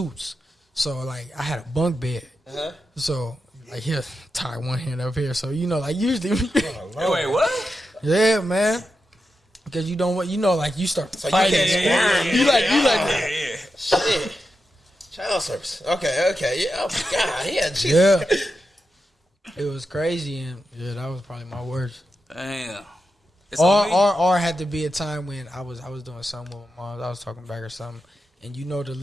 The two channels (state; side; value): normal; both; correlation 0.88